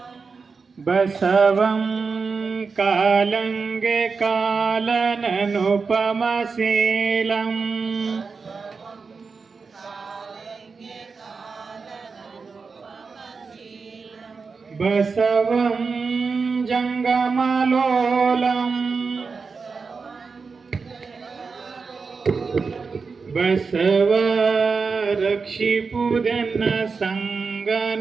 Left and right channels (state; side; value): quieter; left; 4.8 dB